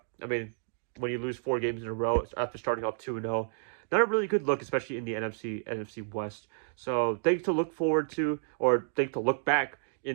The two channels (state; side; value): silent; left; digital silence